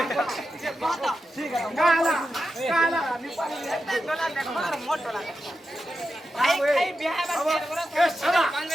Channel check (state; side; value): normal; both; correlation 0.89